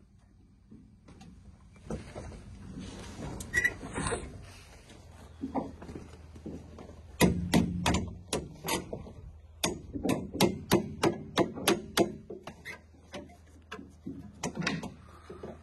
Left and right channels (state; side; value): identical; both; correlation 1.00